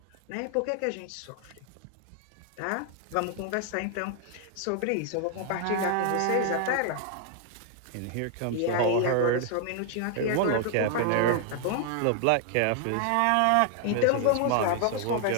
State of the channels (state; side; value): different; both; correlation 0.00